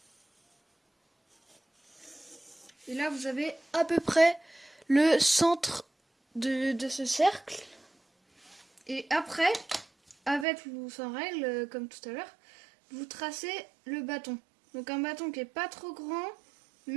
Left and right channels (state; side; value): drops out; left; at 10.5 s